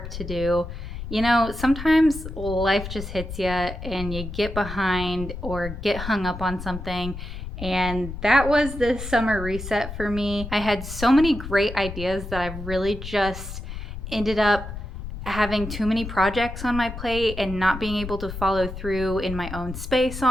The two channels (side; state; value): left; noise; rumble, 9 dB below the sound